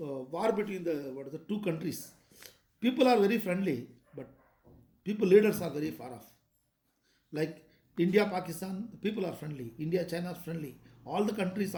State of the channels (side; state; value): both; identical; correlation 1.00